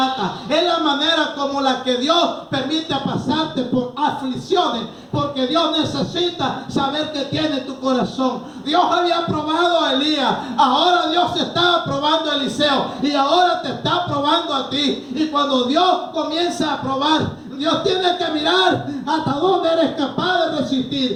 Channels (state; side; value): identical; both; correlation 1.00